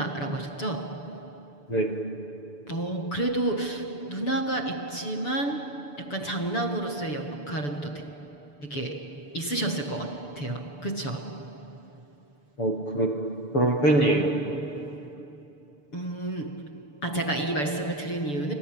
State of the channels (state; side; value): late; right; 6.9 ms